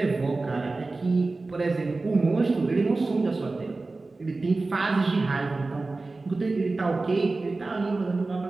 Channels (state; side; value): quieter; left; 3.4 dB